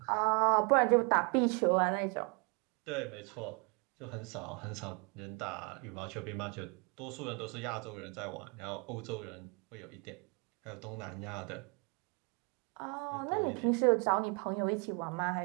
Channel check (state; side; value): quieter; left; 32.5 dB